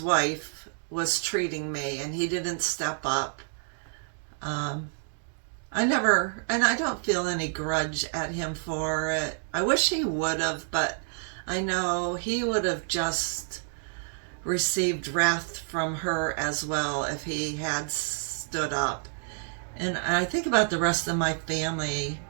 wife, was treating me, and he didn't step up. I never, and I don't feel any grudge at him for it. I wish he would have, but I know he would have just received wrath from her as well if he had stood up. And I think about the rest of my family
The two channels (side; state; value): left; silent; digital silence